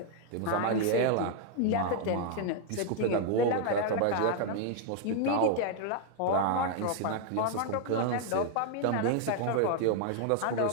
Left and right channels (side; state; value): both; different; correlation 0.00